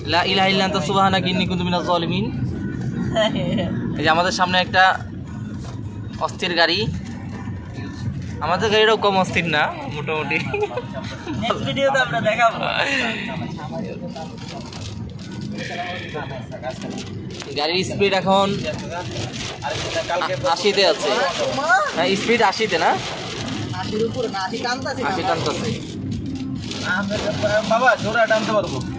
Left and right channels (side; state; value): both; identical; correlation 1.00